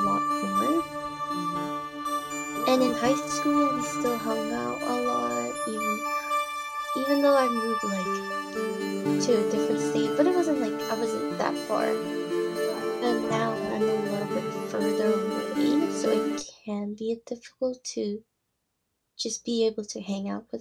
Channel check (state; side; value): identical; both; correlation 1.00